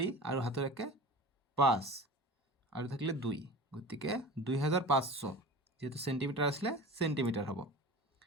আৰু হাতৰ 1 5 আৰু থাকিলে 2, গতিকে 2500, যেহেতু চেণ্টিমিটাৰ আছিলে চেণ্টিমিটাৰ হ'ব।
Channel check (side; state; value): both; normal; correlation 0.35